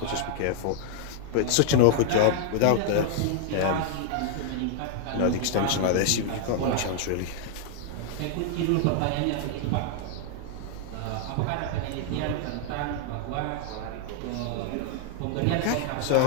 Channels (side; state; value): both; different; correlation 0.00